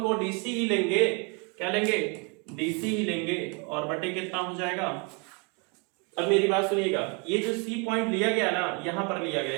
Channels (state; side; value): quieter; left; 33.7 dB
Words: को DC ही लेंगे। क्या लेंगे? DC ही लेंगे और बटे कितना हो जाएगा? अब मेरी बात सुनिएगा, ये जो C पॉइंट लिया गया ना, यहां पर लिया गया,